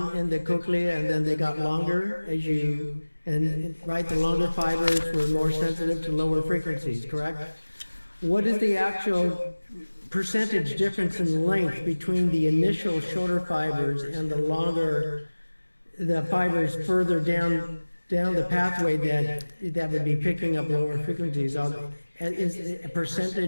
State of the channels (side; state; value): both; inverted; correlation -1.00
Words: in the cochlea, and then they got longer right, the longer fibers were more sensitive to lower frequencies, correct? What is the actual percentage difference in length between the initial shorter fibers and the fibers further down down the pathway that would be picking up lower frequencies, is a